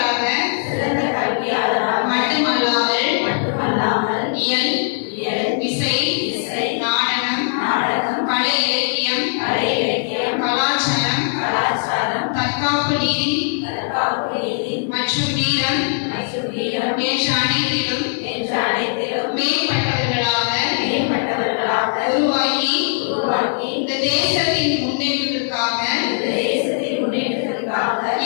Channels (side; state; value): right; silent; digital silence